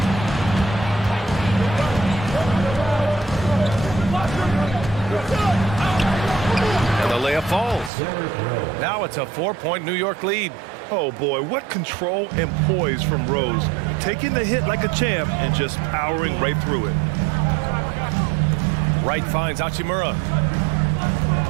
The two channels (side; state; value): left; drops out; at 7.9 s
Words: And the layup falls. Now it's a 4-point New York lead. Oh boy, what control and poise from Rose. Taking the hit like a champ and just powering right through it. Wright finds Hachimura.